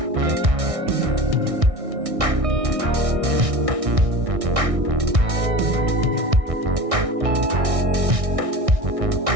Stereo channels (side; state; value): left; late; 1.6 ms